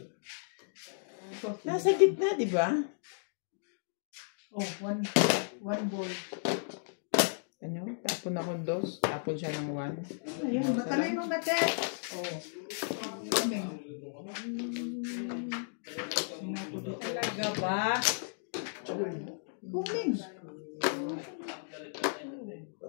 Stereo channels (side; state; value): right; silent; digital silence